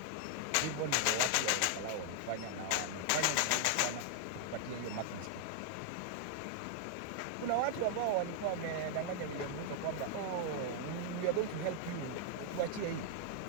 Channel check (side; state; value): both; different; correlation 0.00